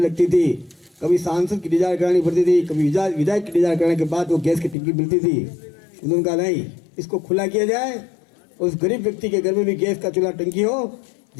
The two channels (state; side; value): drops out; right; at 4.8 s